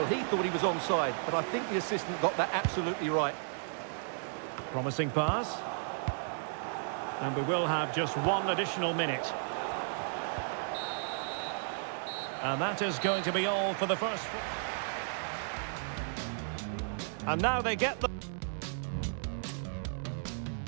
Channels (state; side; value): silent; left; digital silence